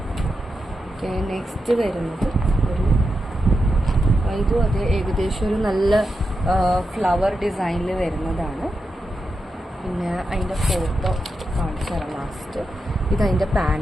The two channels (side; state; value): both; normal; correlation 0.88